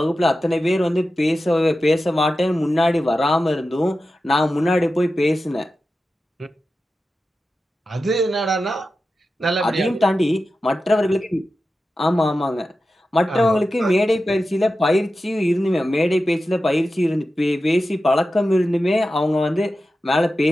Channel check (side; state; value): both; normal; correlation 0.92